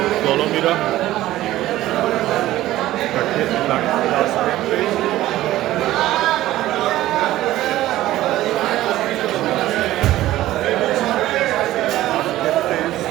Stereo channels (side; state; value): left; quieter; 15.1 dB